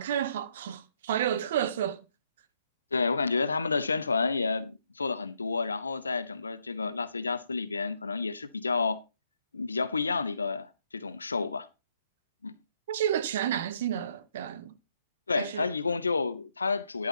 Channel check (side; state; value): both; inverted; correlation -0.74